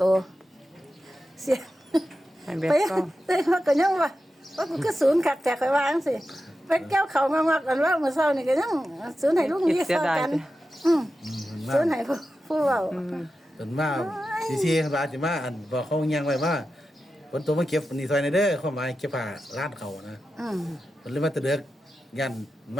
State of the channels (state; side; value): normal; both; correlation 0.91